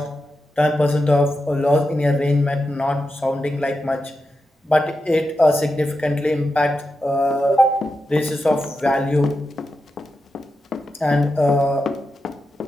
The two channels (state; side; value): normal; both; correlation 0.89